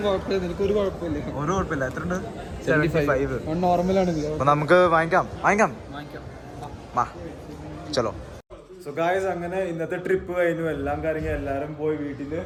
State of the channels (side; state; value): both; identical; correlation 1.00